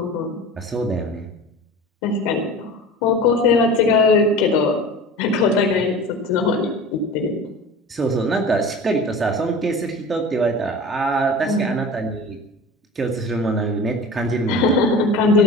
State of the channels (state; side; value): normal; both; correlation 0.36